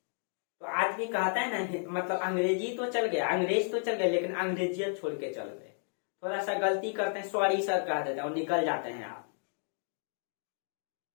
तो आज भी कहता है ना, मतलब अंग्रेजी तो चल गया, अंग्रेज तो चल गए, लेकिन अंग्रेजियत छोड़ के चल गए। थोड़ा सा गलती करते हैं, सॉरी सर कह देते हैं और निकल जाते हैं आप।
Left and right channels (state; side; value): silent; right; digital silence